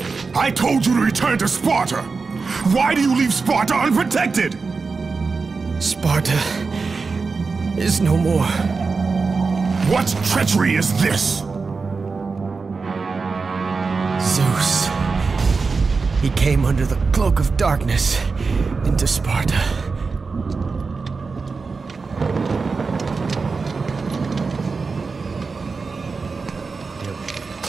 I told you to return to Sparta! Why do you leave Sparta unprotected? Sparta is no more. What treachery is this? Zeus. He came under the cloak of darkness into Sparta.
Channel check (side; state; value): left; quieter; 4.5 dB